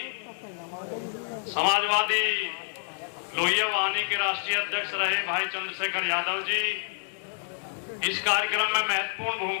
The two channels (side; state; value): right; silent; 59 dB below the other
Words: समाजवादी लोहिया वाहिनी के राष्ट्रीय अध्यक्ष रहे भाई चंद्रशेखर यादव जी, इस कार्यक्रम में महत्वपूर्ण